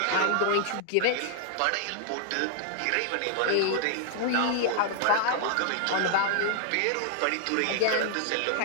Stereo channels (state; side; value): different; both; correlation 0.00